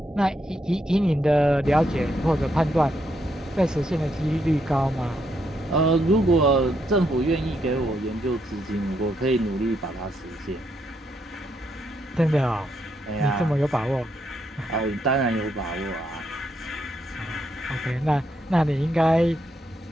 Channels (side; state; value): both; normal; correlation 0.77